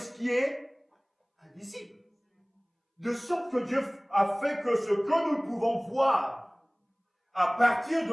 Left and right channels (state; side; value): identical; both; correlation 1.00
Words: qui est invisible. De sorte que Dieu a fait que ce que nous pouvons voir, à partir